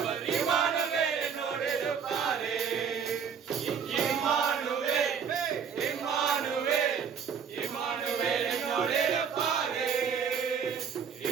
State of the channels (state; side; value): quieter; left; 6.9 dB